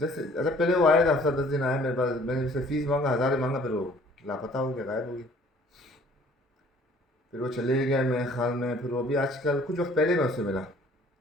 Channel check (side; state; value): both; normal; correlation 0.56